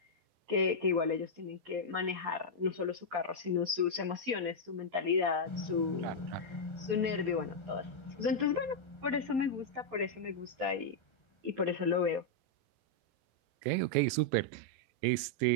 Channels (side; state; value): left; late; 11 ms